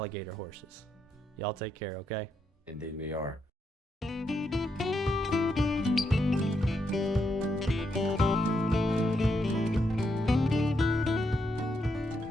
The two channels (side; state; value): both; normal; correlation 0.80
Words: horses. Y'all take care, okay? Indeed we are.